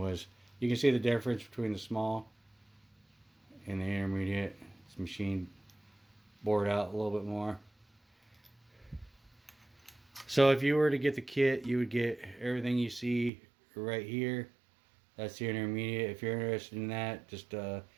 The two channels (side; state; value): left; drops out; at 13.3 s